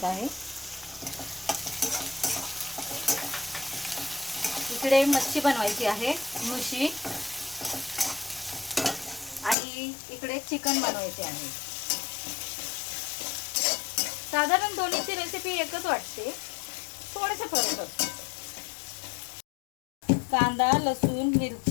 आहे. इकडे मच्छी बनवायची आहे, मुशी, आणि इकडे चिकन बनवायचे आहे. साधारण दोन्हीची रेसिपी एकच वाटते, थोडेसे फरक असतो. कांदा, लसूण,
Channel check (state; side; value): drops out; right; at 9.6 s